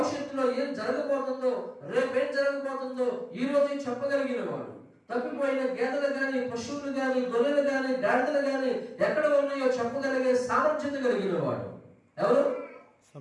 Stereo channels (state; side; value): identical; both; correlation 1.00